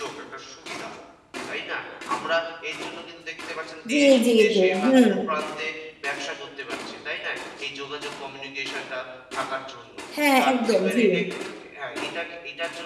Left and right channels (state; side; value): identical; both; correlation 1.00